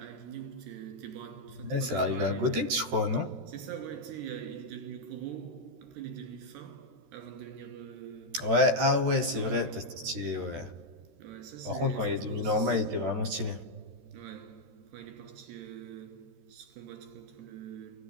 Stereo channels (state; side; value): late; left; 13 ms